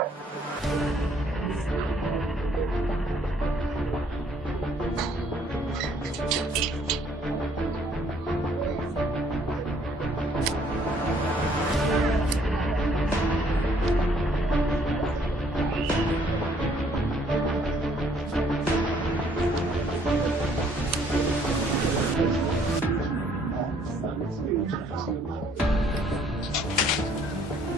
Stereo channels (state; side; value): normal; both; correlation 0.63